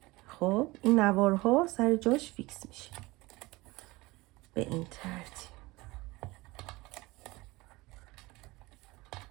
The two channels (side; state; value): left; quieter; 21.6 dB